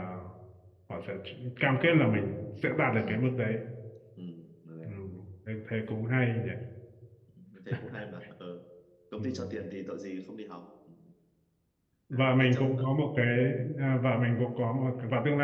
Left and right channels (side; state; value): both; identical; correlation 1.00